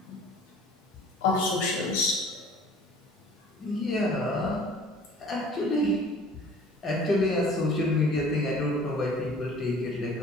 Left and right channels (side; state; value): both; normal; correlation 0.49